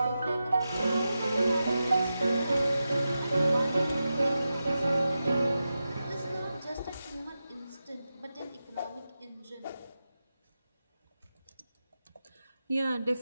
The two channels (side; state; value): both; inverted; correlation -0.91